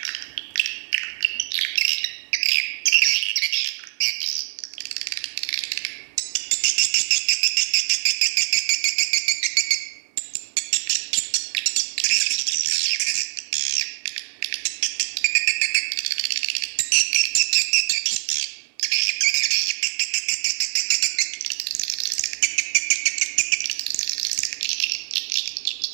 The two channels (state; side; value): silent; left; 63 dB below the other